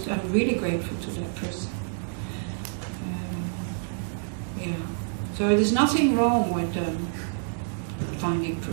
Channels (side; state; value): left; silent; digital silence